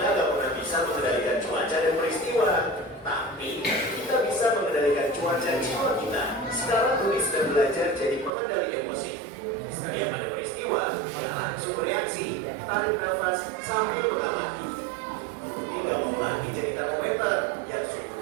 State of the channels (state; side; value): drops out; left; at 8.3 s